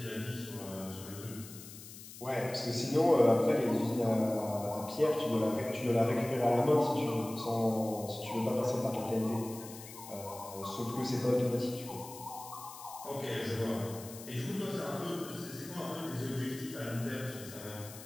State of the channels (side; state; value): left; noise; hiss, 15 dB below the sound